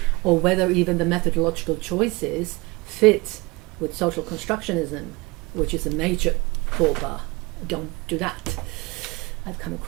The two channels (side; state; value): left; quieter; 24.3 dB